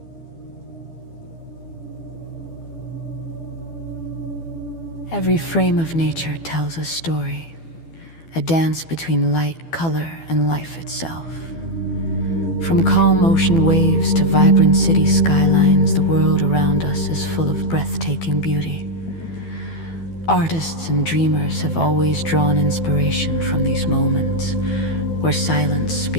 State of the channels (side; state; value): right; late; 12 ms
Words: Every frame of nature tells a story, a dance between light, color, and life itself. From calm ocean waves to vibrant city skylines, the world around us is full of breathtaking beauty. Artists and dreamers have always drawn inspiration from these moments, where silence